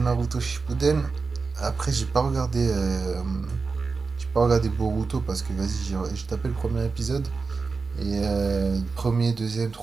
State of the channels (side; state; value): left; quieter; 4.5 dB